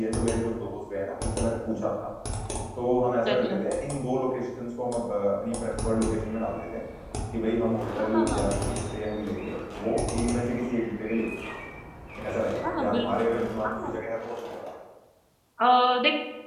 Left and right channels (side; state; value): both; identical; correlation 1.00